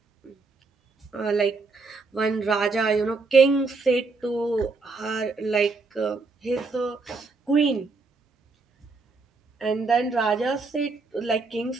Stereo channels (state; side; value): quieter; left; 4.0 dB